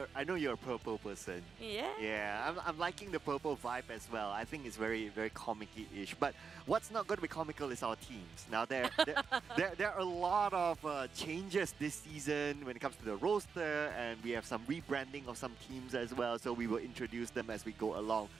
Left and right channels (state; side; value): quieter; left; 5.7 dB